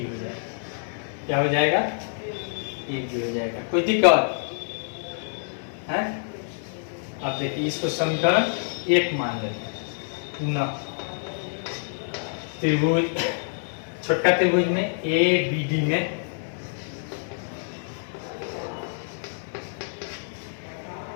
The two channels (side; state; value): right; silent; 58 dB below the other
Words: जाएगा। क्या हो जाएगा? ए बी हो जाएगा। कोई दिक्कत है? अब देखिए इसको समीकरण 1 मान लेते हैं। त्रिभुज, छोटका त्रिभुज में ए बी डी में